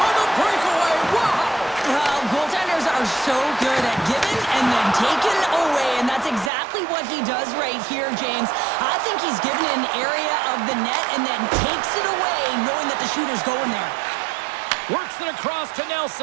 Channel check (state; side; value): drops out; left; at 6.5 s